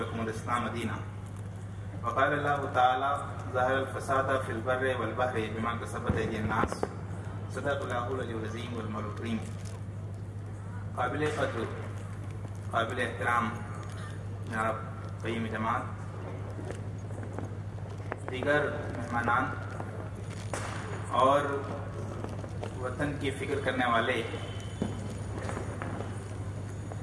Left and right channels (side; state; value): both; identical; correlation 1.00